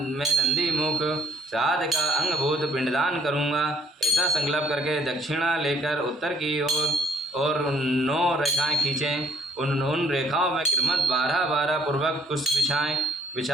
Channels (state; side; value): normal; both; correlation 0.61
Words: नंदी मुख श्राद्ध का अंगभूत पिंडदान करूँगा। ऐसा संकल्प करके दक्षिणा लेकर उत्तर की ओर और 9 रेखाएं खींचें। उन रेखाओं में क्रमशः 12-12 पूर्वक पुष्प